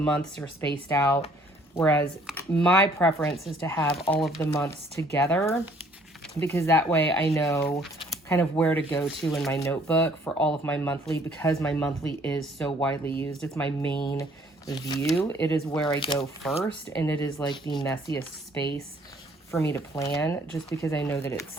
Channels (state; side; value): normal; both; correlation 0.60